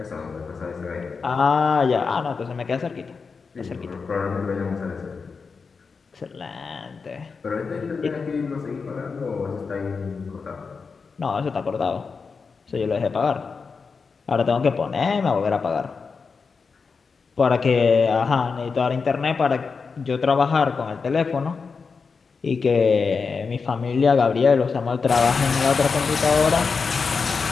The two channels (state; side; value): quieter; right; 5.0 dB